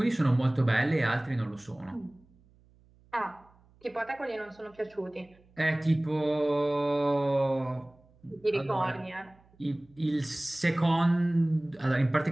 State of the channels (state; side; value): noise; right; hum, 30 dB below the sound